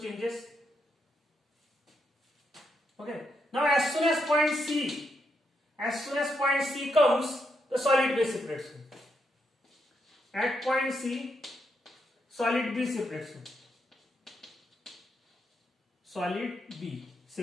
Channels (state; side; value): normal; both; correlation 0.80